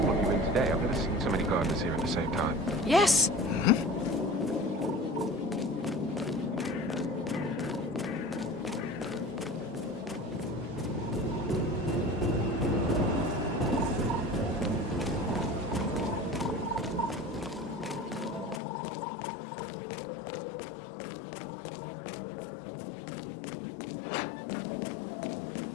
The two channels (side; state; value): right; drops out; at 18.6 s